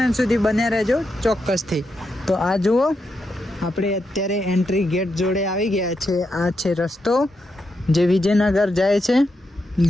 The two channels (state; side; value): normal; both; correlation 0.84